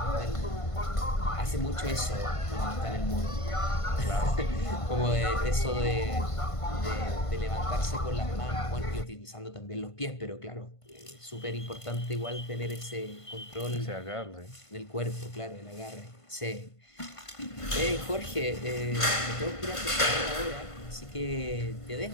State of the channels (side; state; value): right; late; 1.5 ms